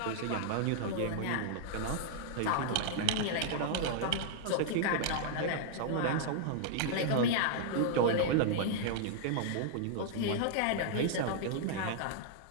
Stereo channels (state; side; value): different; both; correlation -0.01